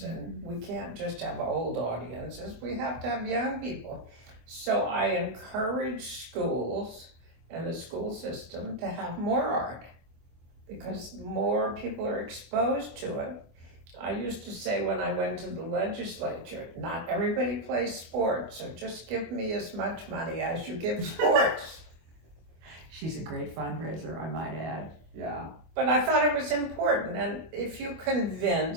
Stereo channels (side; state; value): left; late; 24 ms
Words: and we can't just have old audiences. We have to have young people. So I encourage schools and the school system to have more art, because more people are exposed to it. I used to say when I went to the legislature, not everybody plays sports, so just give me as much money as you give sports. She's a great fundraiser, I might add. Yeah. But I thought it was important, and if you